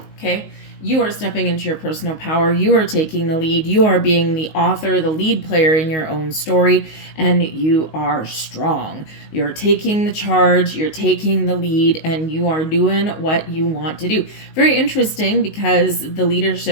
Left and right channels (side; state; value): right; late; 19 ms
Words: okay? You are stepping into your personal power. You are taking the lead. You are being the author, the lead player in your own story, and you are strong. You're taking the charge, you're taking the lead, and you are doing what you want to do. Very interesting, because the